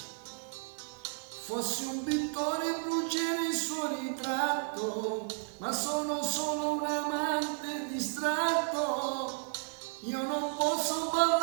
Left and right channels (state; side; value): silent; left; 56 dB below the other